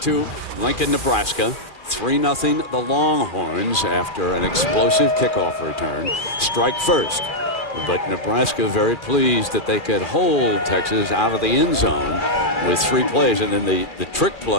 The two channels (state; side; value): late; right; 2.4 ms